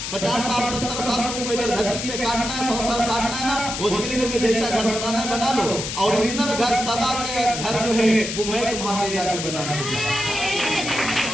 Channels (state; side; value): noise; left; hiss, 5 dB below the sound